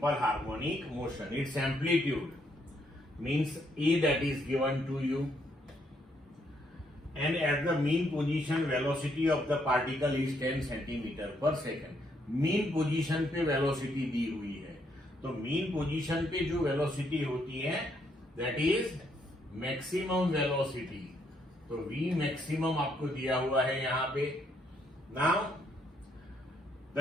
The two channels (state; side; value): normal; both; correlation 0.73